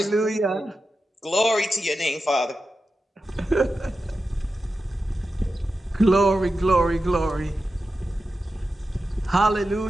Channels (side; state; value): both; normal; correlation 0.91